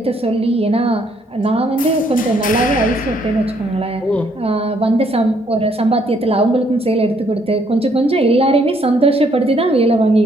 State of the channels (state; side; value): normal; both; correlation 0.68